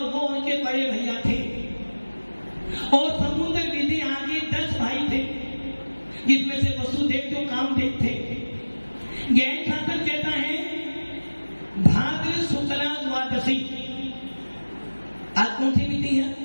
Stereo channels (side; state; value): both; inverted; correlation -1.00